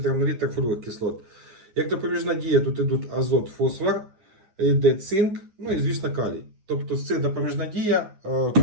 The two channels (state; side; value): late; left; 9.7 ms